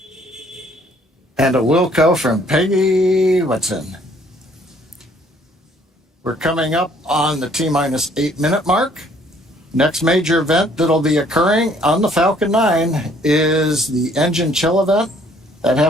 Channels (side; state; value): both; normal; correlation 0.61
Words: And a Wilco from Peggy Whitson. We're coming up on the T-minus 8-minute mark. Next major event that'll be occurring on the Falcon 9 is the engine chill event. That